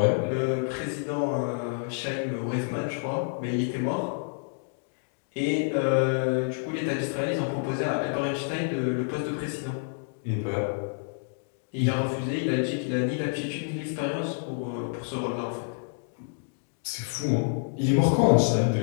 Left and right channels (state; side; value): silent; right; digital silence